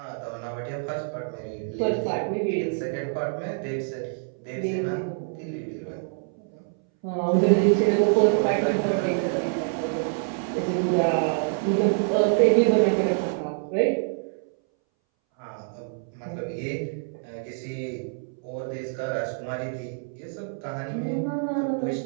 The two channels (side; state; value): left; silent; 61 dB below the other